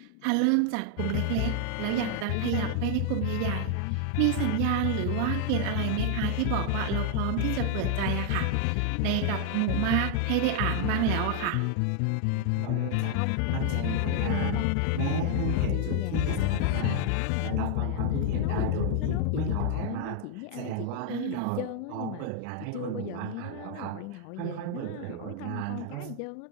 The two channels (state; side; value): different; both; correlation 0.00